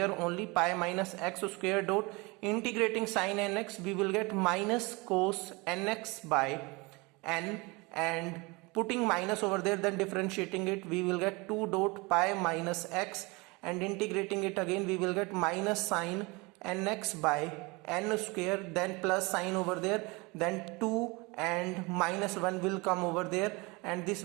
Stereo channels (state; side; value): quieter; left; 25.9 dB